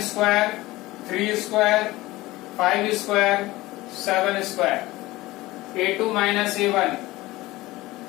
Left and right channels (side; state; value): right; quieter; 18.8 dB